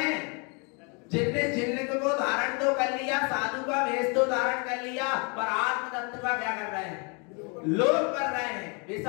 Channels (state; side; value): quieter; right; 33.6 dB